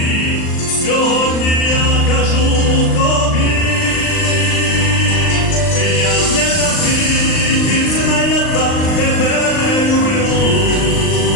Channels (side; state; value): right; late; 39 ms